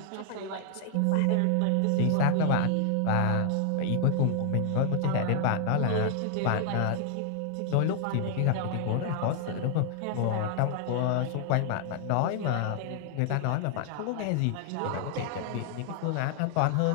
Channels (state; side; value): different; both; correlation 0.00